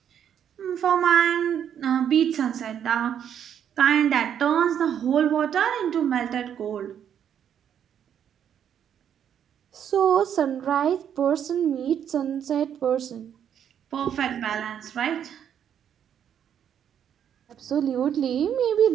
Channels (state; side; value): quieter; left; 9.0 dB